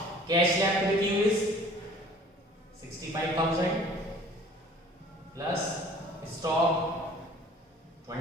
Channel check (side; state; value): both; normal; correlation 0.50